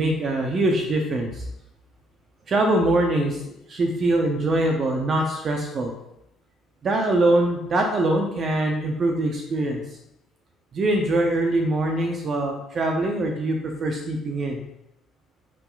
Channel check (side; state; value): both; normal; correlation 0.73